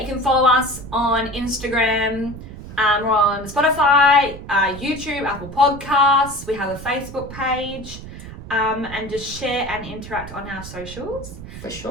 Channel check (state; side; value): noise; right; rumble, 13 dB below the sound